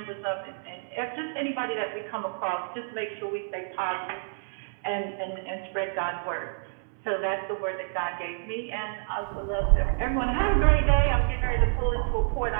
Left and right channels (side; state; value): left; silent; 59 dB below the other